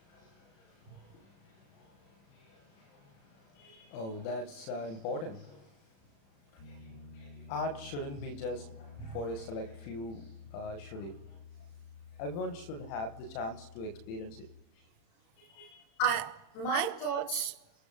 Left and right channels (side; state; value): right; late; 35 ms